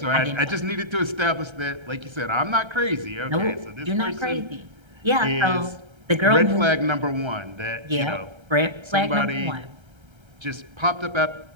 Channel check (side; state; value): left; late; 1.3 ms